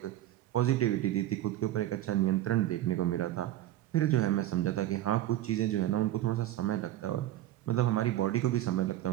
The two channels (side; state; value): left; quieter; 13.7 dB